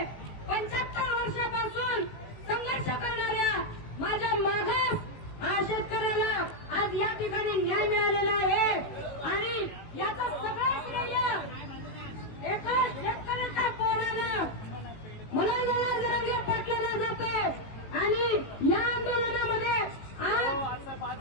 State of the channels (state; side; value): late; right; 18 ms